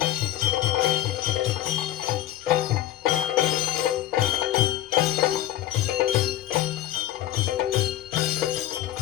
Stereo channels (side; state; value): right; quieter; 13.3 dB